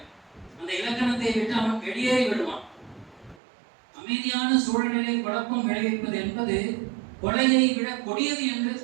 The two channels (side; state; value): left; drops out; at 3.4 s